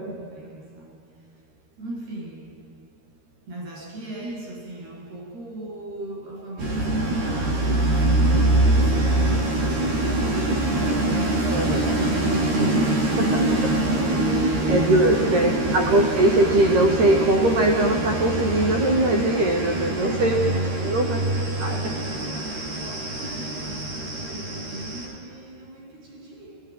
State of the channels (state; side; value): late; left; 13 ms